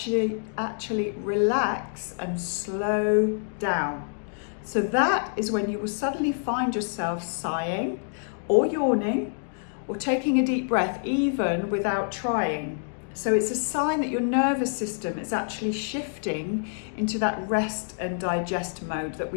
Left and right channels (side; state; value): right; silent; digital silence